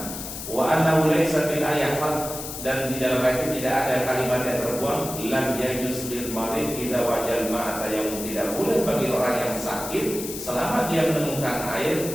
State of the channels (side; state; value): left; noise; hiss, 8 dB below the sound